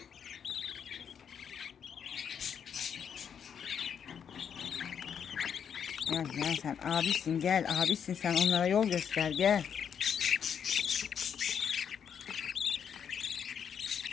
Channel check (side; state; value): right; quieter; 7.8 dB